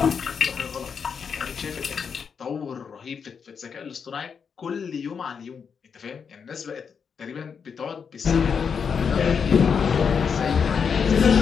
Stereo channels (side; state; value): right; quieter; 6.4 dB